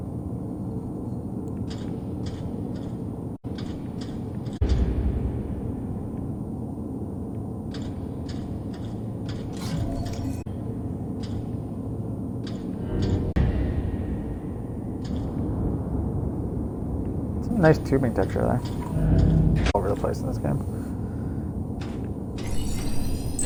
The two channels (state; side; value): identical; both; correlation 1.00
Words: Nice tubing texture there. All over the place in this game.